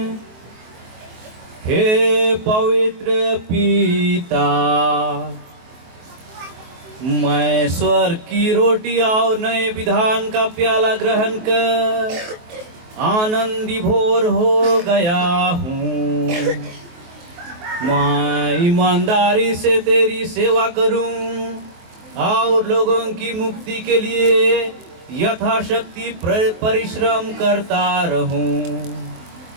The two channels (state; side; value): late; left; 23 ms